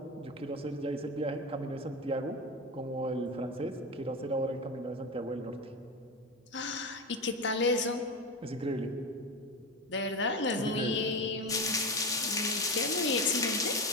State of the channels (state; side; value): normal; both; correlation 0.20